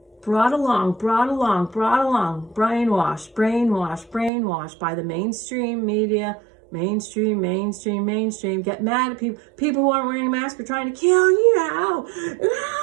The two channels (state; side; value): drops out; left; at 4.3 s